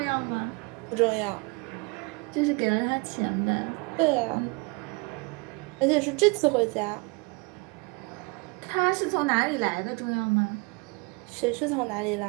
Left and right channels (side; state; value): left; quieter; 29.2 dB